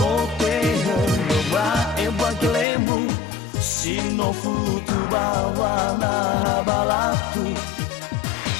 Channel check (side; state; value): right; drops out; at 2.7 s